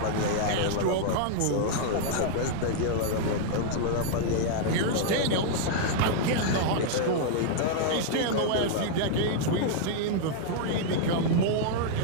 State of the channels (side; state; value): both; different; correlation -0.01